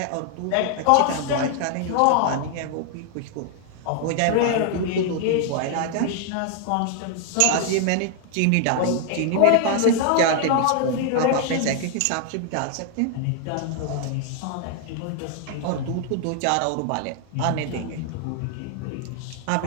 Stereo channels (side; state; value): both; different; correlation 0.00